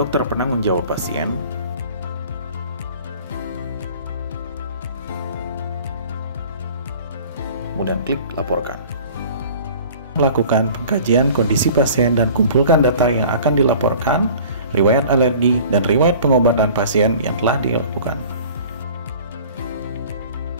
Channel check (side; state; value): both; inverted; correlation -0.46